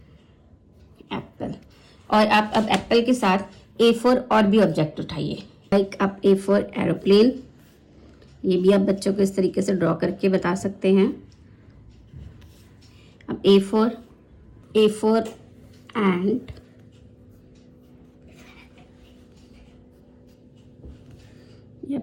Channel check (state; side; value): identical; both; correlation 1.00